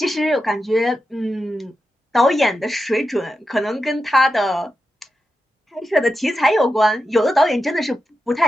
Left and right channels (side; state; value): both; normal; correlation 0.89